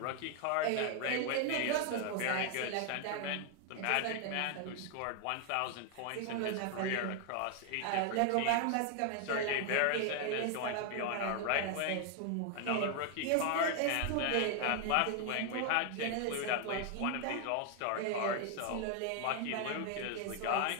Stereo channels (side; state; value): both; different; correlation 0.00